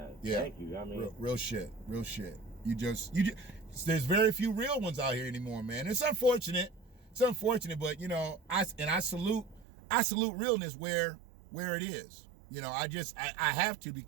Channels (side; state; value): left; drops out; at 9.7 s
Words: Yeah. Thank you. I mean, real shit. You just there's very few real ones out here anymore, man. It's unfortunate. But you know, I salute realness where it is. You know, I have to,